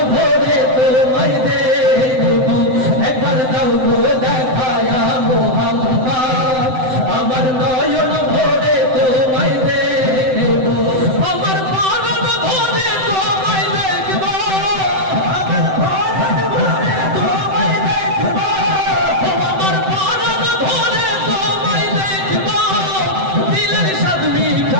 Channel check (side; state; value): left; late; 7.8 ms